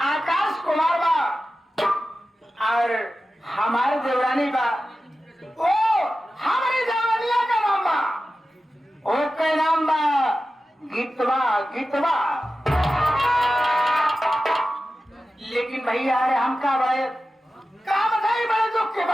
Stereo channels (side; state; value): both; normal; correlation 0.94